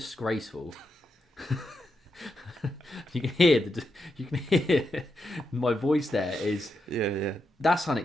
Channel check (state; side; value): normal; both; correlation 0.84